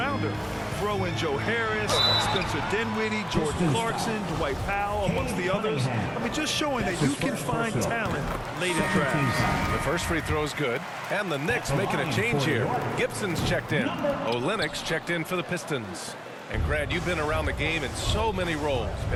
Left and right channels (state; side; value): identical; both; correlation 1.00